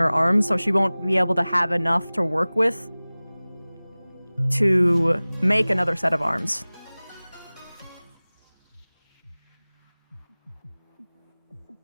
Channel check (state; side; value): inverted; both; correlation -0.99